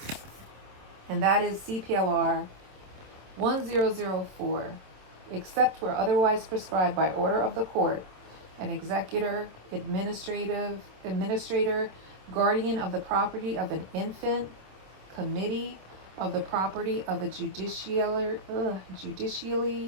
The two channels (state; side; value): late; left; 26 ms